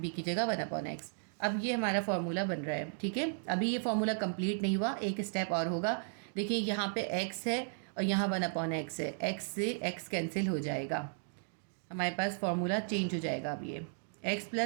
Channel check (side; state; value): left; silent; digital silence